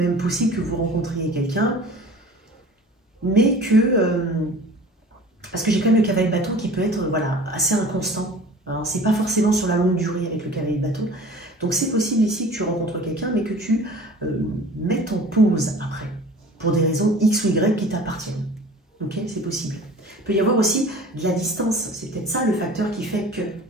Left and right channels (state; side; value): normal; both; correlation 0.43